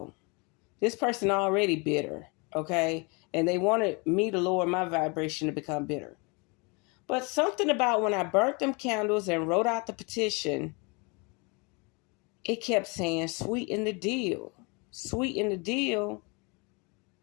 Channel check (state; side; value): quieter; right; 30.1 dB